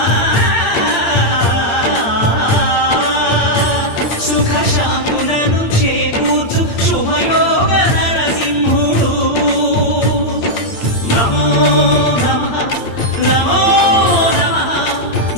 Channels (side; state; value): right; late; 8.7 ms